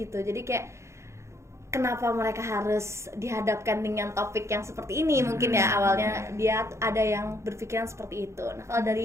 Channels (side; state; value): left; late; 0.14 ms